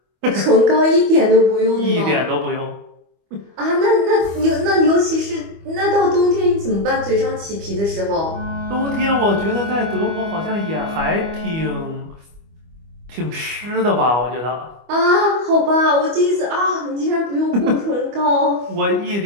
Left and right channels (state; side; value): late; left; 25 ms